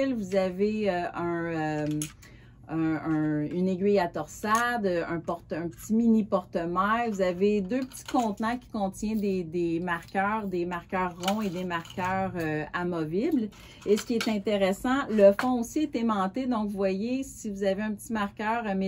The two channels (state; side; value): identical; both; correlation 1.00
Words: vous avez une aiguille à torsade, un petit mini porte-mailles. Vous avez deux petits contenants qui contiennent des marqueurs ronds et des marqueurs amovibles. Et ce qui est intéressant, le fond aussi est aimanté. Donc, vous voyez, si vous avez un petit marqueur